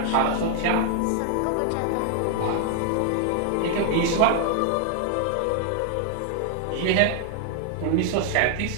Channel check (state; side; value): different; both; correlation 0.00